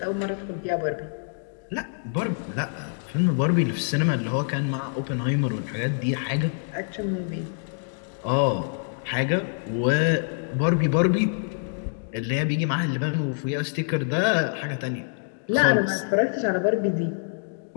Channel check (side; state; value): right; silent; digital silence